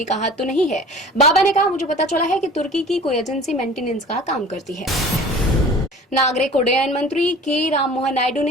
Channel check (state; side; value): normal; both; correlation 0.43